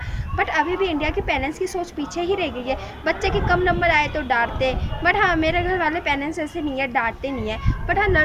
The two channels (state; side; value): identical; both; correlation 1.00